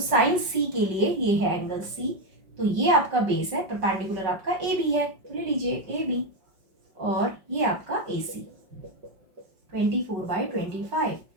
C के लिए ये है एंगल C, तो ये आपका बेस है, परपेंडिकुलर आपका AB है, तो ले लीजिए AB, और ये आपका AC 24/25।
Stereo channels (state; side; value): late; left; 5.5 ms